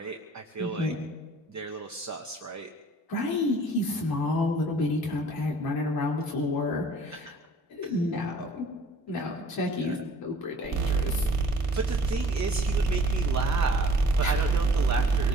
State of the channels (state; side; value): normal; both; correlation 0.54